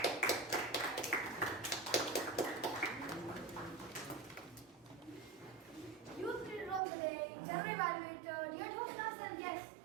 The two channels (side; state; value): left; drops out; at 6.8 s